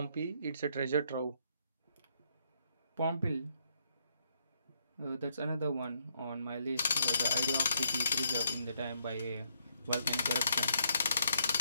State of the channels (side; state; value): both; inverted; correlation -0.74